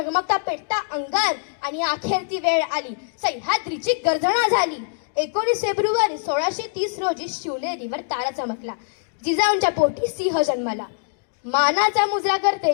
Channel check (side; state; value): right; silent; digital silence